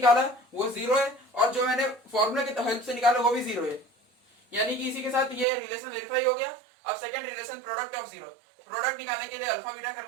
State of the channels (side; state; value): left; drops out; at 5.5 s